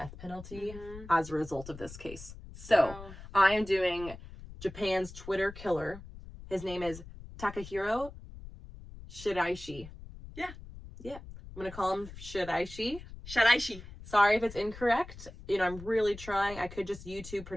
penalty as a result of this case. So, I am doing Japan's Twitter killer. His name is Takahiro Shiraishi. Yeah. I'm gonna call him Shiraishi. Sorry if it's incorrect. You know, I'm really trying. I could just YouTube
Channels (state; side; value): noise; left; rumble, 15 dB below the sound